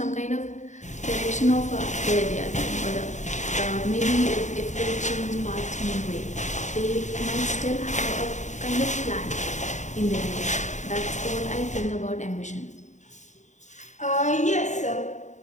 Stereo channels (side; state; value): right; late; 0.35 ms